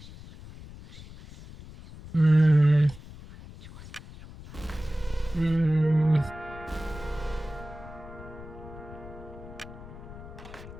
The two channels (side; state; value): left; noise; rumble, 15 dB below the sound